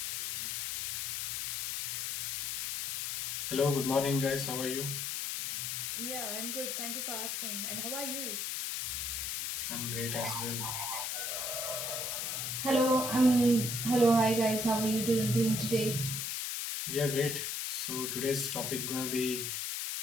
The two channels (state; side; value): noise; left; hiss, 2 dB below the sound